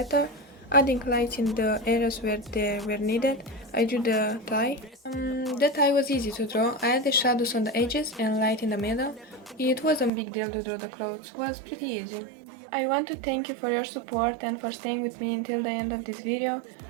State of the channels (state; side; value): drops out; left; at 10.1 s